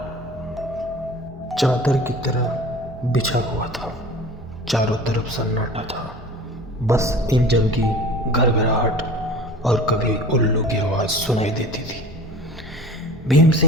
चादर की तरह बिछा हुआ था। चारों तरफ सन्नाटा था। बस इंजन की घरघराहट और कभी उल्लू की आवाज़ सुनाई देती थी। भीम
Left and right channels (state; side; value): normal; both; correlation 0.41